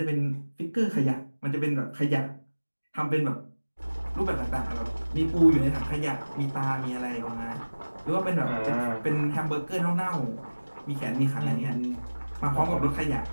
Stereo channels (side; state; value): both; inverted; correlation -1.00